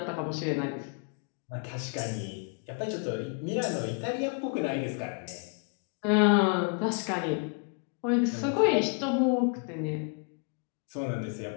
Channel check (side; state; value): right; quieter; 39.8 dB